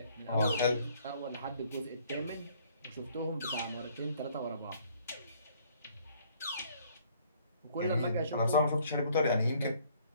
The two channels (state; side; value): inverted; both; correlation -0.61